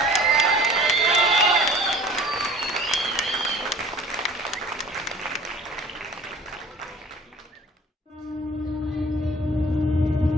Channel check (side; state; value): both; normal; correlation 0.47